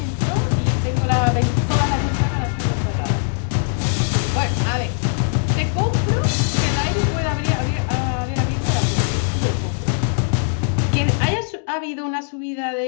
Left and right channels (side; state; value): right; silent; digital silence